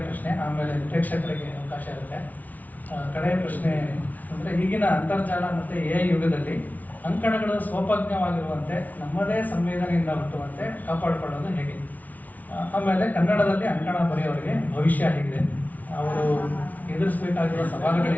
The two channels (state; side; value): late; right; 0.075 ms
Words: ಪ್ರಶ್ನೆ, ಆಮೇಲೆ ಪ್ರೇಕ್ಷಕರಿಗೆ ಅವಕಾಶ ಇರುತ್ತೆ. ಕಡೆಯ ಪ್ರಶ್ನೆ ಅಂದರೆ, ಈಗಿನ ಅಂತರ್ಜಾಲ ಮತ್ತು ಎ ಯುಗದಲ್ಲಿ ಅಂಕಣಗಳು ಸ್ವೋಪಜ್ಞವಾಗಿರುವಂತೆ ನಮ್ಮದೇ ಸಂವೇದನೆಯಿಂದ ಹುಟ್ಟುವಂತೆ ಕಾಪಾಡಿಕೊಳ್ಳೋದು ಹೇಗೆ? ಆಮೇಲೆ ಕನ್ನಡದಲ್ಲಿ ಅಂಕಣ ಬರೆಯೋರಿಗೆ ಭವಿಷ್ಯ ಹೇಗಿದೆ? ಅವರು ಎದುರಿಸಬೇಕಾಗಿರುವ